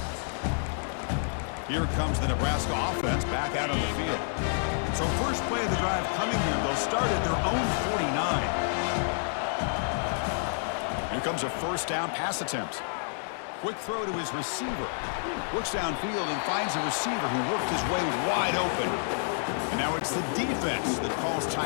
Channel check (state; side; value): silent; right; digital silence